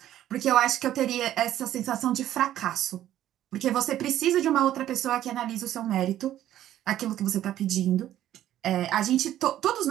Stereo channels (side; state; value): left; quieter; 12.4 dB